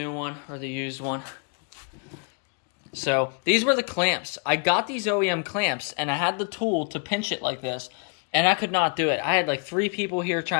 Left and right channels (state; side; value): quieter; right; 36.3 dB